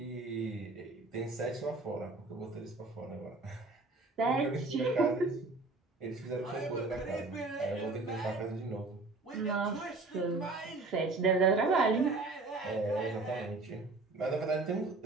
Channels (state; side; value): quieter; left; 3.4 dB